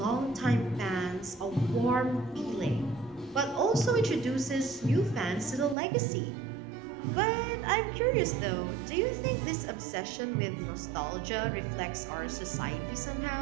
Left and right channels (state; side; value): drops out; left; at 5.8 s